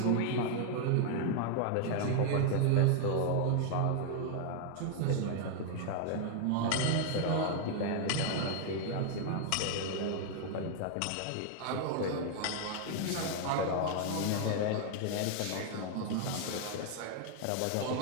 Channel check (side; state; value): both; different; correlation 0.00